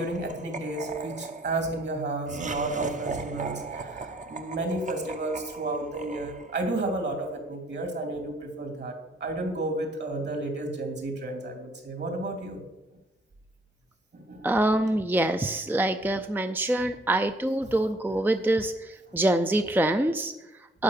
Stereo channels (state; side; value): normal; both; correlation 0.62